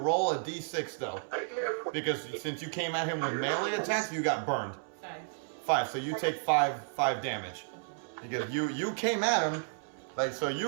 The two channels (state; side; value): silent; left; 56 dB below the other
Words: a D6 though, because since you came at him with melee attacks, you got burned. 5. So you take 5 damage. Because you came at him, like, so